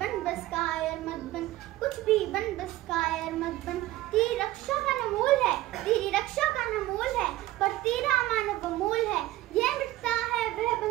बन बस कायर मत बन, कुछ भी बन बस कायर मत बन। तेरी रक्षा का न मोल है, तेरी रक्षा का न मोल है, पर तेरा मानव अमोल है। यह मिटता है वह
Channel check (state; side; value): quieter; left; 16.4 dB